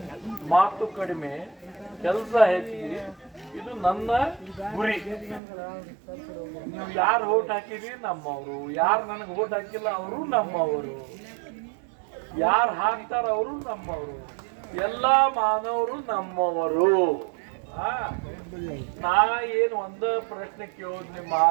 ಮಾತು ಕಡಿಮೆ ಕೆಲಸ ಹೆಚ್ಚಿಗೆ, ಇದು ನನ್ನ ಗುರಿ. ನೀವು ಯಾರು ಓಟ್ ಹಾಕಿರಿ ನಮ್ಮವರು, ಯಾರು ನನಗೆ ಓಟ್ ಹಾಕಿಲ್ಲ ಅವರು ನಮ್ಮವರು, ಯಾರು ಹಾಕ್ತಾರ ಅವರು ನಮ್ಮವರು, ಎಲ್ಲಾ ಮಾನವರು ನಮ್ಮವರು. ನಾ ಏನು ಒಂದ ಪ್ರಶ್ನೆ ಕೇಳೋದು, ನಿಮ್ಮ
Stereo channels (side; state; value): left; drops out; at 5.4 s